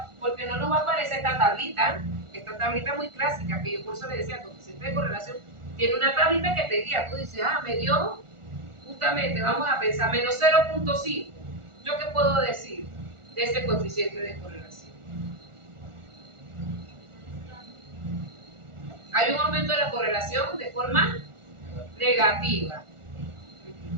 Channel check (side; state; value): left; late; 1.4 ms